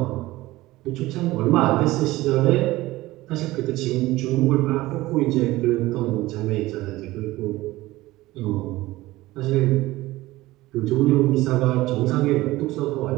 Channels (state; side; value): quieter; left; 18.2 dB